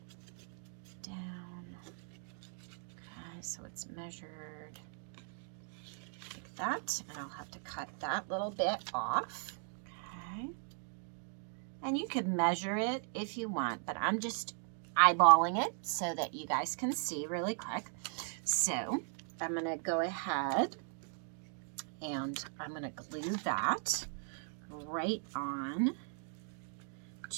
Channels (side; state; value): left; silent; 52 dB below the other